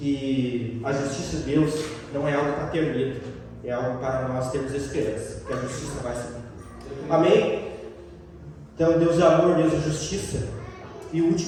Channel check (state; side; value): identical; both; correlation 1.00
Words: a justiça de Deus não é algo para ter medo, é algo para nós termos esperança, que a justiça vai se cumprir. Amém? Então, Deus é amor, Deus é justiça. E o